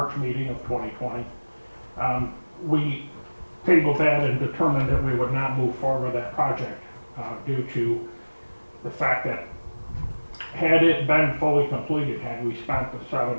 meeting of 2020. We tabled that and determined that we would not move forward with that project due to the fact that had it been fully completed, had we spent the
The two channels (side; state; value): both; inverted; correlation -1.00